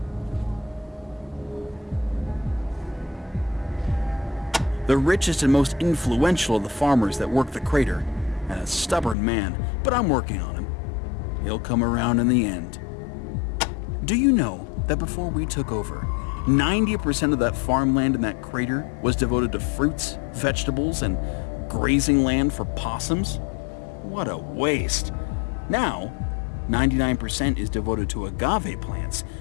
The richest and most influential of the farmers that work the crater, and a stubborn man, but I'm working on him. He'll come around in the end. Do you know that before we took over, 90% of that farmland in that crater was devoted to fruits, vegetables, and grazing land for possums? What a waste. Now, 99% is devoted to agave plants,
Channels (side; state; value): right; drops out; at 9.2 s